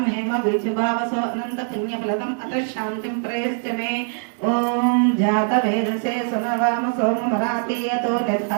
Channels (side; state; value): left; silent; 56 dB below the other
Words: हेम बीजभावसो अनंत पुण्यफलदम् अत्र शान्तिं प्रयश्च मे ओम जात वेदसे सुनवाम सोमरातीयतो